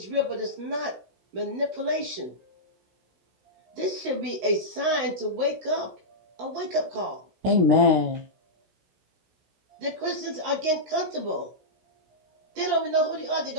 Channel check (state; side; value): late; left; 16 ms